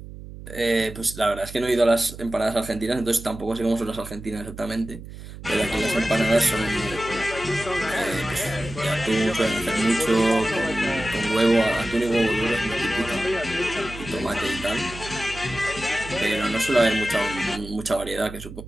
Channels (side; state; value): right; noise; hum, 13 dB below the sound